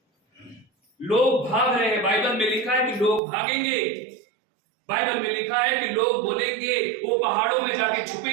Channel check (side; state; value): left; drops out; at 3.2 s